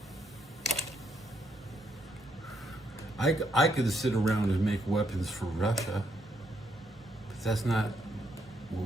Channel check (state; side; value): normal; both; correlation 0.76